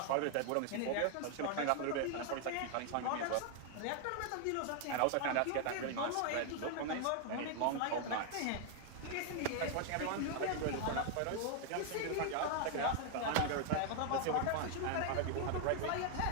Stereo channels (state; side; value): different; both; correlation 0.00